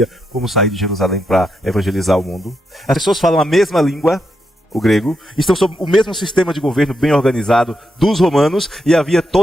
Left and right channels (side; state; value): both; normal; correlation 0.83